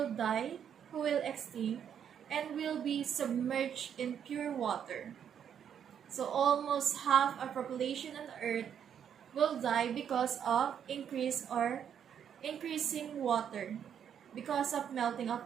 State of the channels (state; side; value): quieter; left; 8.6 dB